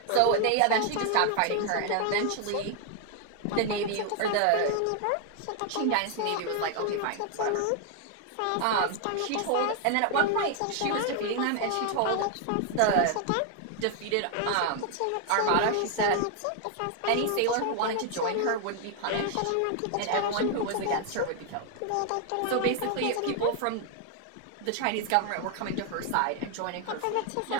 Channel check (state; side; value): different; both; correlation 0.00